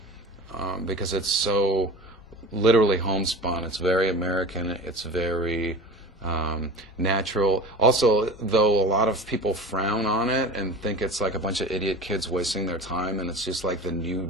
because it's so literally homespun. It's very American. It's very natural. Also, though a lot of people frown on it and think it's like a bunch of idiot kids wasting their time, and it's just like the new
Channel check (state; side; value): normal; both; correlation 0.36